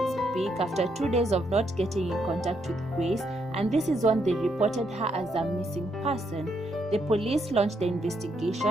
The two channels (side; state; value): both; normal; correlation 0.77